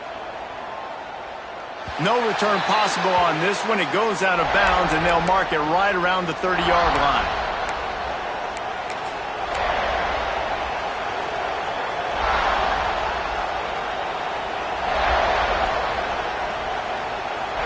No return possible on this one. It goes out of bounds, and they'll mark it right around the 30-yard line.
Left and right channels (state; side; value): identical; both; correlation 1.00